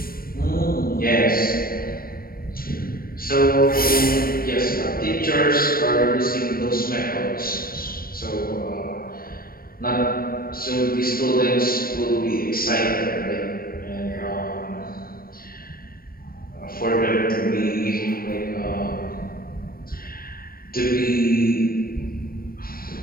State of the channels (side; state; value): right; late; 0.43 ms